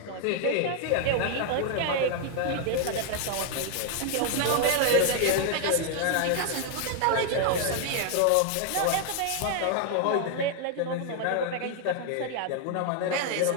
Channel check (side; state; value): both; different; correlation 0.00